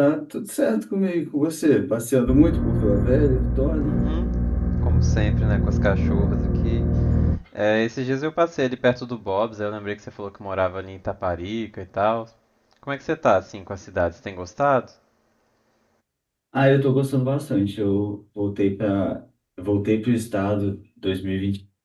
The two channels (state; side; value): identical; both; correlation 1.00